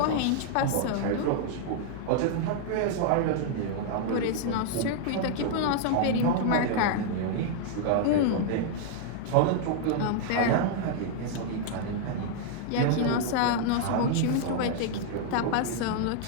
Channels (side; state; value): both; different; correlation -0.01